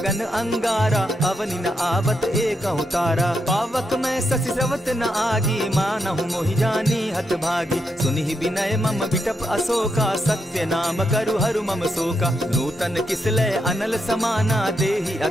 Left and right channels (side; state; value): both; normal; correlation 0.82